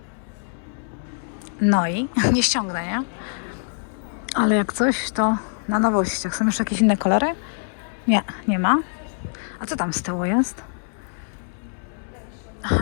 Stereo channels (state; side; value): silent; right; 63 dB below the other